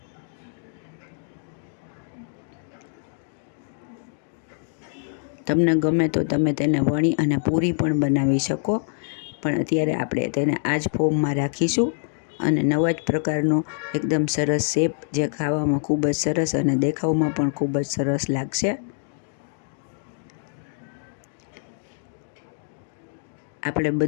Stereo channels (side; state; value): right; silent; digital silence